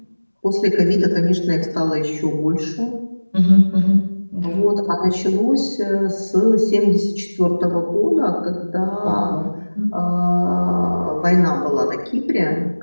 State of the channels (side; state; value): both; inverted; correlation -1.00